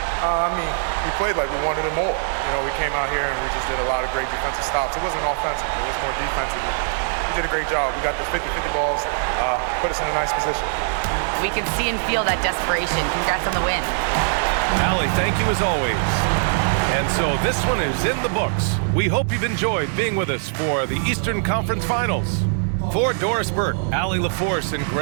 We played like we wanted it more. You know, we came out here and we just did a lot of great defensive stops. It wasn't offensive. It was more defensive. We did a great job. We got the 50-50 balls, put us in a nice position. We can see and feel that desperation. Congrats on the win. Allie, thank you as always. And so this one is in the books. We hope you've enjoyed being with us for the Eastern Conference Finals. For Doris Burke, Allie LaForce, and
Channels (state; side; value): silent; left; digital silence